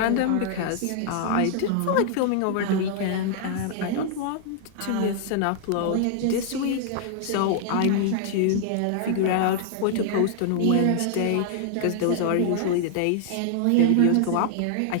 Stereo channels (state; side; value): different; both; correlation -0.01